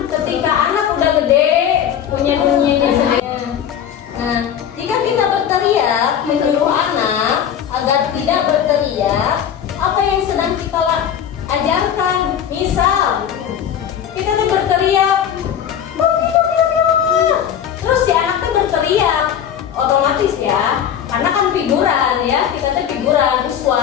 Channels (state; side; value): quieter; right; 9.2 dB